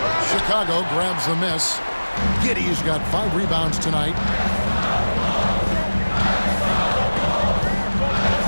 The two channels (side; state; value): both; inverted; correlation -1.00